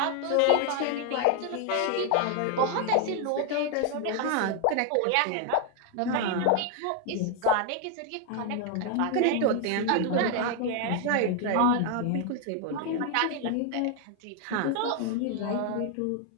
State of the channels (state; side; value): different; both; correlation 0.00